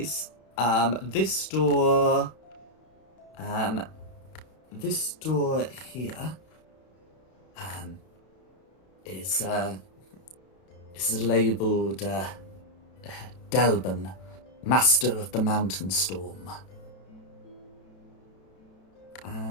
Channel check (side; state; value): right; late; 32 ms